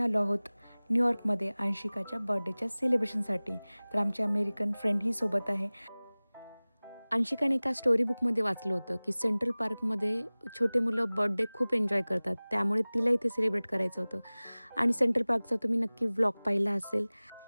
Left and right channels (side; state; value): both; inverted; correlation -1.00